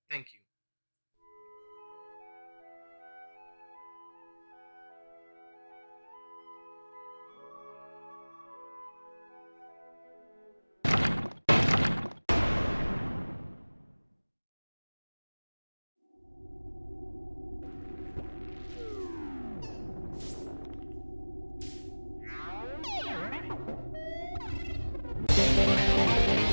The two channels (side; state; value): both; inverted; correlation -1.00